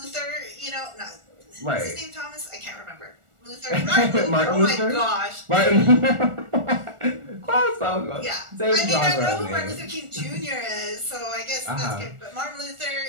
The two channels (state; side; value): late; left; 1.4 ms